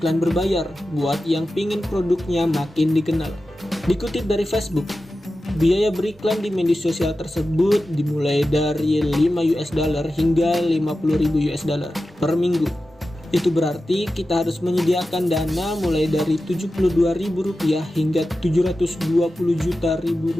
berbayar buat yang pingin produknya makin dikenal. Dikutip dari Facebook, biaya beriklan di media sosial tersebut dimulai dari $5 hingga $50.000 per minggu. Itu berarti kita harus menyediakan dana mulai dari Rp72.000 hingga Rp720 juta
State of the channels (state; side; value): normal; both; correlation 0.93